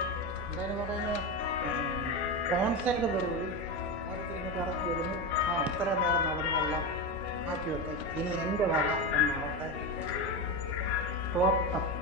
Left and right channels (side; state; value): both; normal; correlation 0.17